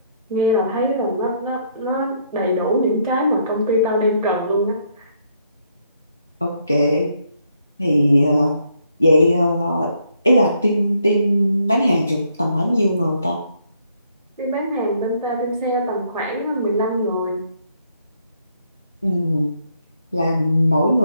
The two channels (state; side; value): inverted; both; correlation -0.71